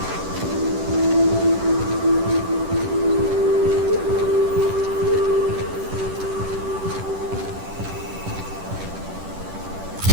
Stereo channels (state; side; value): late; left; 10 ms